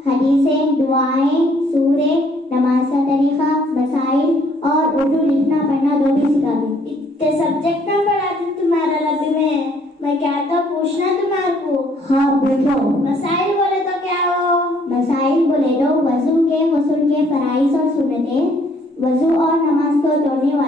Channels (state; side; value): normal; both; correlation 0.64